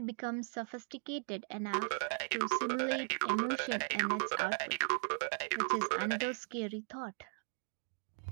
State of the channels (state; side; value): silent; left; 53 dB below the other